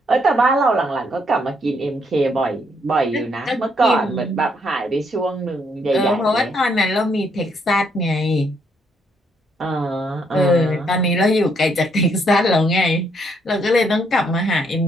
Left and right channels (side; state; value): both; normal; correlation 0.72